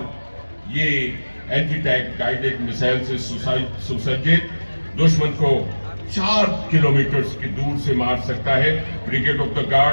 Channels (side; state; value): both; inverted; correlation -1.00